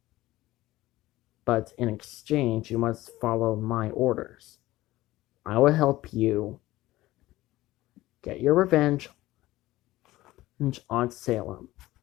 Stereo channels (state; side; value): quieter; right; 17.2 dB